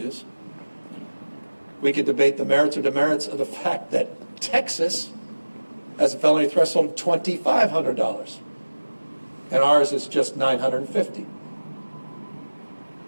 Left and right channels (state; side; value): inverted; both; correlation -1.00